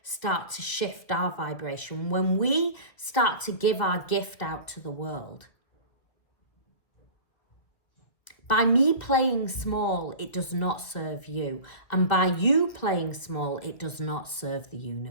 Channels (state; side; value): late; right; 1.9 ms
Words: start to shift our vibration. When we start to give our gift out to the world. By me playing small, it does not serve you. And by you playing small, it does not serve the